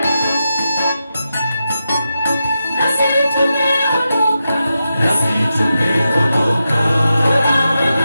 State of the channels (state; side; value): inverted; both; correlation -0.89